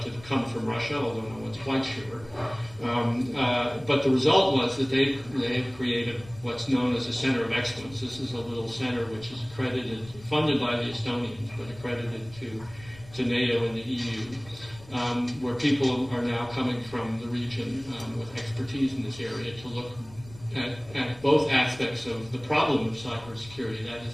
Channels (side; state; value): left; noise; rumble, 20 dB below the sound